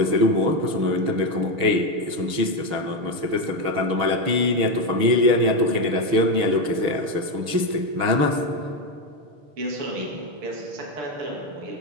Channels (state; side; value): late; left; 6.3 ms